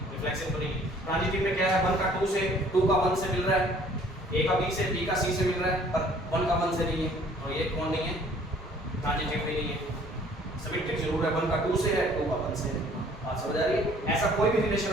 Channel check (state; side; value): normal; both; correlation 0.56